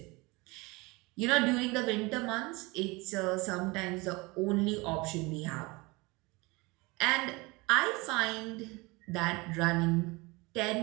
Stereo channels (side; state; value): left; quieter; 24.7 dB